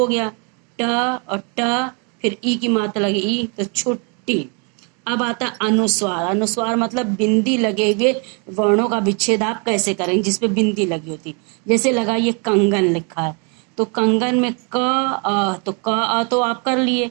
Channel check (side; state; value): left; quieter; 35.4 dB